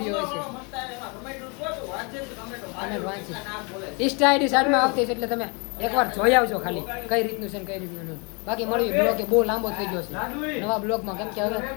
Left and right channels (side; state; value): right; quieter; 32.8 dB